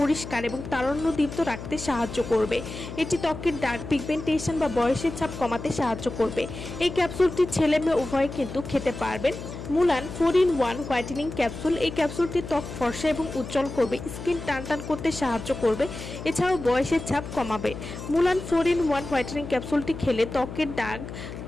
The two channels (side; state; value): left; noise; hum, 10 dB below the sound